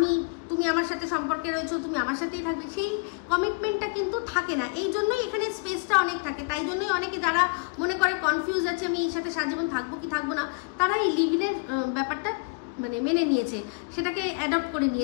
তুমি আমার সাথে সম্পর্কে রয়েছো, তুমি আমার সাথেই থাকবে, সেই কমিটমেন্টটা কিন্তু থাকে না। এই জন্যই এখানে স্পেসটা অনেক থাকে। তাই জন্যই অনেকে যারা মনে করে কনফিউজ আছে আমি এর সাথে সারাজীবন থাকবো কি থাকবো না, তারা এই লিভিংয়ের ব্যাপারটা মানে মেনে নিয়েছে, সেটাকে অ্যাডপ্ট করে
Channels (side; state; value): right; quieter; 32.7 dB